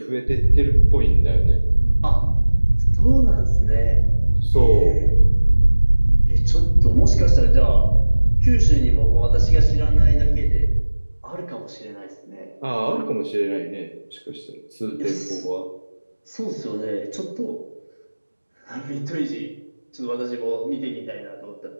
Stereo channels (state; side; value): inverted; both; correlation -1.00